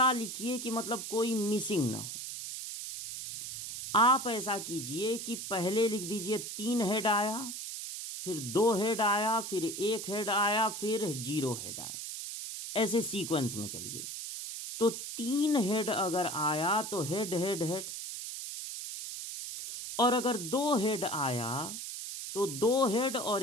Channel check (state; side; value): noise; right; hiss, 7 dB below the sound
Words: लिखिए कि मतलब कोई मिसिंग ना हो। आप ऐसा कीजिए कि पहले लिख दीजिए 3 हेड आया, फिर 2 हेड आया, फिर 1 हेड आया, फिर 0 हेड आया, ऐसे सीक्वेंस में चलिए। तो 3 हेड अगर आया तो हेड हेड हेड, और अगर 2 हेड आया तो 2 हेड और